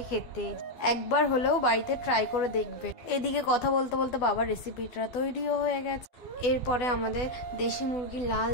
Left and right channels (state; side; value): late; right; 12 ms